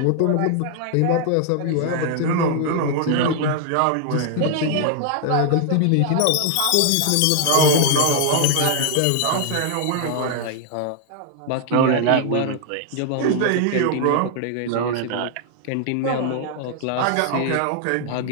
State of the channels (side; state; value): both; different; correlation 0.00